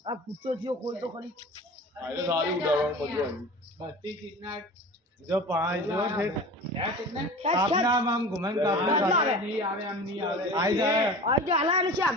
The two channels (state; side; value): normal; both; correlation 0.36